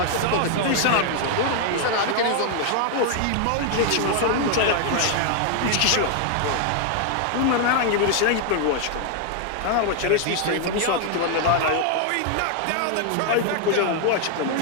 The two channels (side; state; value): both; different; correlation 0.00